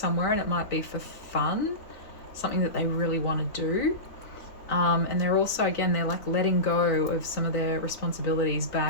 and it might be for fun, something that they really want to do. And they're also, again, they're like letting go of some of their responsibilities,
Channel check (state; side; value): late; right; 3.8 ms